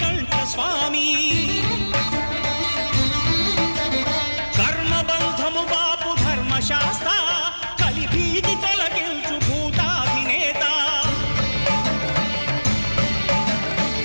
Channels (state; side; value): inverted; both; correlation -1.00